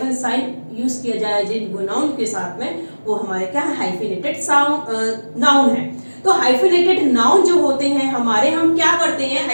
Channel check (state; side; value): inverted; both; correlation -1.00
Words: साइन यूज किया जाए जिन नाउन के साथ में, वो हमारे क्या है, हाइफिनेटेड नाउन है। तो हाइफिनेटेड नाउन जो होते हैं हमारे, हम क्या करते हैं,